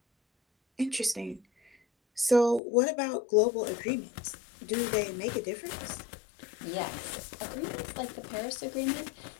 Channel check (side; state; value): right; drops out; at 2.6 s